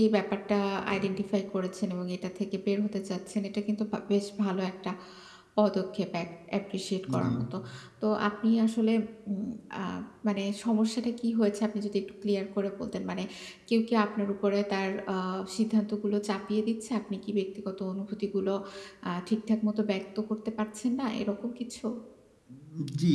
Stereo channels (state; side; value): identical; both; correlation 1.00